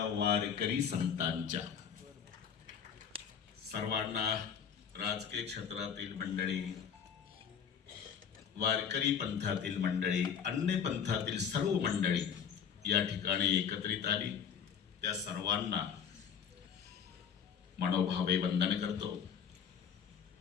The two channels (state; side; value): quieter; right; 7.6 dB